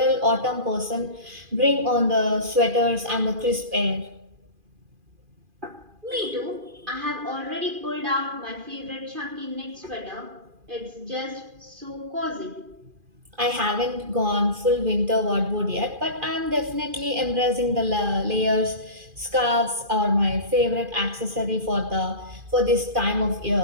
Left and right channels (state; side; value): late; left; 2.4 ms